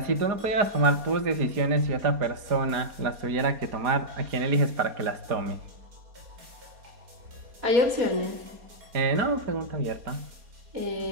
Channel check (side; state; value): left; late; 4.2 ms